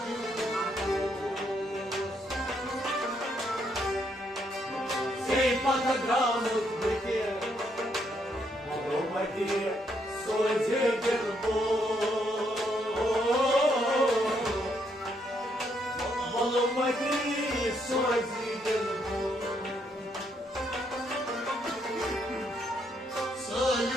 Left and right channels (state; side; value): normal; both; correlation 0.74